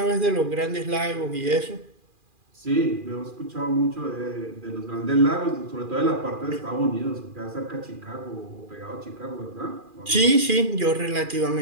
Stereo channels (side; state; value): left; late; 2.4 ms